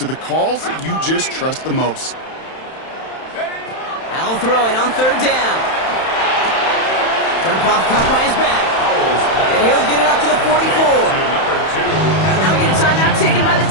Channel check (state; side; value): late; right; 31 ms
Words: the calls that you just trust the most. Powell throwing on third down. Dump off caught by his back. And he'll get it up to the 44. Now we get a timeout taken by the